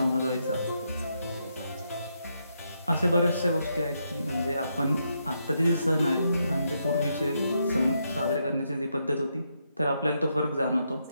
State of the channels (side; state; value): both; inverted; correlation -0.80